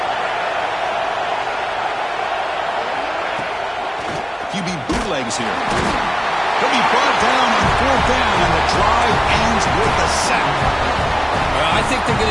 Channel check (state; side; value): identical; both; correlation 1.00